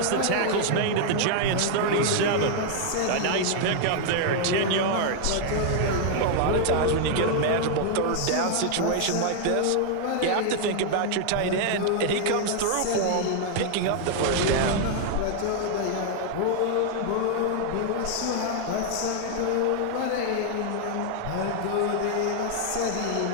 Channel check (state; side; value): different; both; correlation 0.00